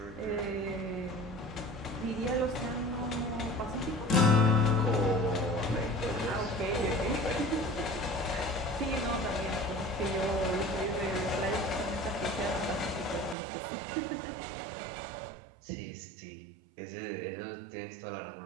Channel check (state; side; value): drops out; left; at 13.4 s